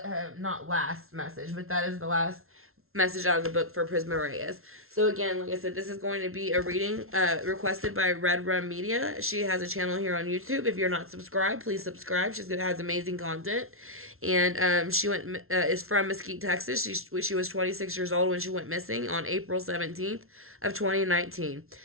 Not last message, but that is the last message out of the book for Prisma Reyes. So again, like I said, this is going to be a reading requested by Red Rum Media. She has a channel here on YouTube. If you're not subscribed, please subscribe. She has amazing content. And she is from Mesquite, Texas. She was 26 years old when she went missing on April 17th of 2019.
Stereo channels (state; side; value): late; left; 0.62 ms